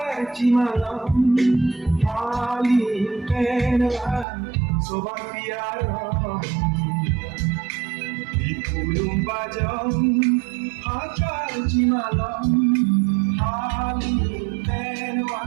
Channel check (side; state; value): left; drops out; at 4.2 s